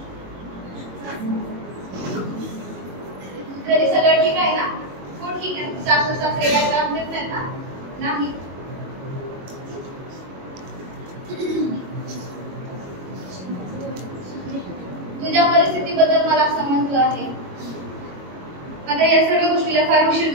घरी सगळं ठीक आहे ना? हो ठीक आहे. सासू सासरे काय त्रास देत नाहीत ना? नाही. तुझ्या परिस्थितीबद्दल मला समजलं आहे. आता या सर्व गोष्टीला फार उशीर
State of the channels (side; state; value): left; late; 22 ms